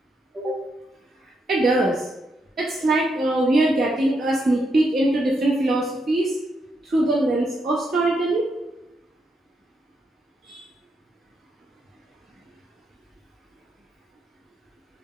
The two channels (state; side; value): normal; both; correlation 0.80